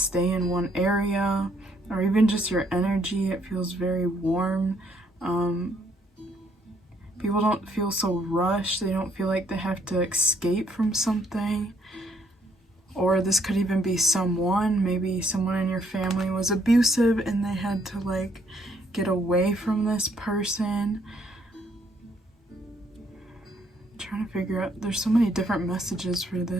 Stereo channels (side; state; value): both; normal; correlation 0.69